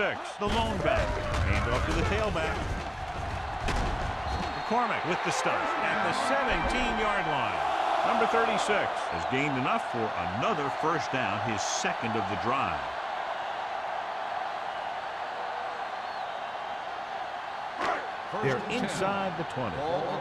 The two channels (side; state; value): both; identical; correlation 1.00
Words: the lone back. Hand off to the tailback. McCormick with the stuff at the 17-yard line. Number 36 has gained enough for another first down, his second of the drive. They're inside the 20. Ball